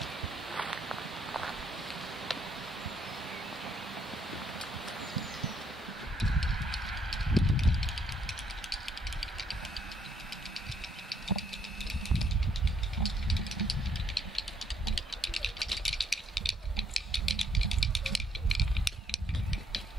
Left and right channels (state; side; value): normal; both; correlation 0.70